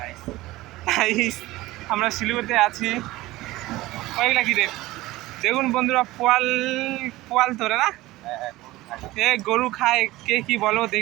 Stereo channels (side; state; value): left; quieter; 18.2 dB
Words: আমরা শিলিগুড়িতে আছি। ওইগুলা কি রে দেখুন বন্ধুরা, পোয়াল পোয়াল ধরে না, এ গরু খায়, কে কি বলো